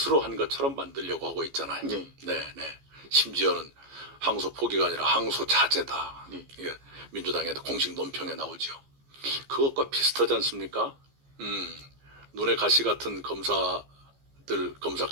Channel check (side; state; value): left; late; 15 ms